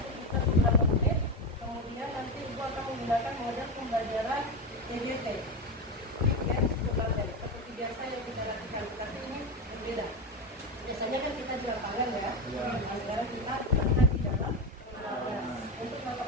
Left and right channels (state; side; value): normal; both; correlation 0.16